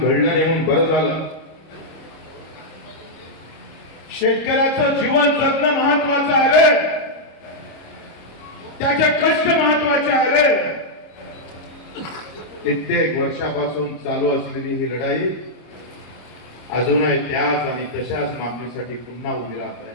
नाही म्हणून बरं झालं। शेतकऱ्याचं जीवन जगणं महत्वाचं आहे रे, त्याचे कष्ट महत्वाचे आहे रे। कित्येक वर्षापासून चालू असलेली ही लढाई अजूनही त्याच आणि तशाच मागणीसाठी पुन्हा उभी राहत आहे।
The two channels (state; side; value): late; right; 26 ms